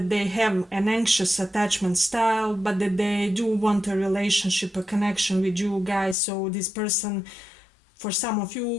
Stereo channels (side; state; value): right; drops out; at 6.2 s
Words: they have an anxious attachment style, but that they do want a relationship, a connection with you guys. So this person, for some of